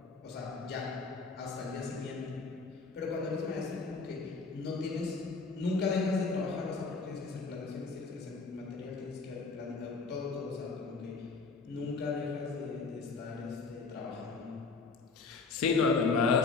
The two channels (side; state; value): right; quieter; 4.3 dB